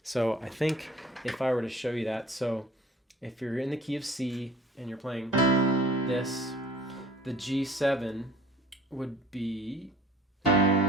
So I think if I were to show you that, so if you're in the key of C and you're playing this, the G7 would be,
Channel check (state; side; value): normal; both; correlation 0.49